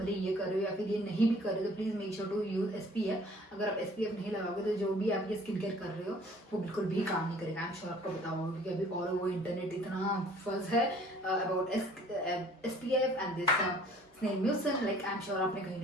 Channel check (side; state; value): both; normal; correlation 0.54